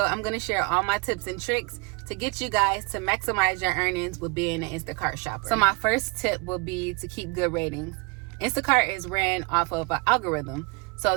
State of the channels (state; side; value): quieter; left; 29.3 dB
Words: I'm going to share all my tips and tricks to get you guys to maximize your earnings with being an Instacart shopper. So my first tip will be to keep good ratings. Instacart is ran off of an algorithm. So